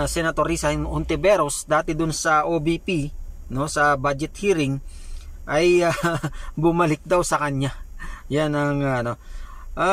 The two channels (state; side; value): identical; both; correlation 1.00